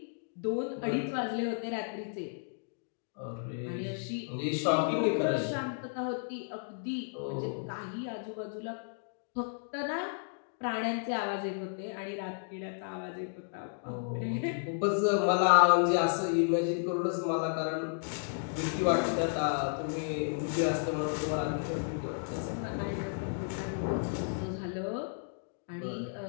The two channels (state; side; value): silent; right; digital silence